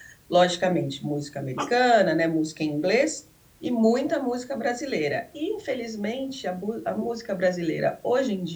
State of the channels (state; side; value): identical; both; correlation 1.00